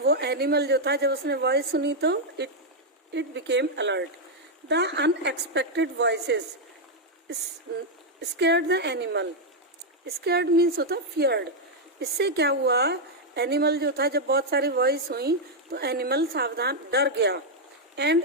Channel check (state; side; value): normal; both; correlation -0.01